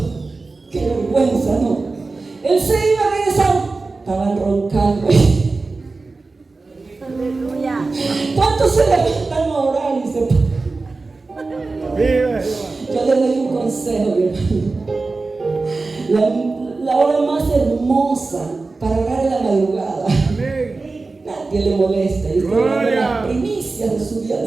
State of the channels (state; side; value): quieter; left; 3.7 dB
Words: Qué vergüenza, ¿no? Él se iba a regresar, estaban roncando. Aleluya. ¿Cuántos se levantan a orar y se Vive. Yo les doy un consejo, mi hermano. La hora más hermosa para orar en la madrugada. Amén. Nadie le molesta. Y está dando las primicias de su día